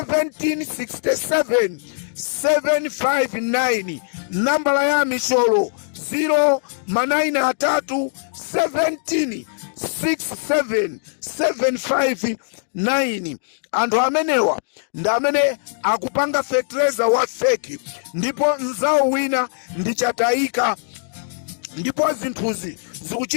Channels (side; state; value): right; silent; digital silence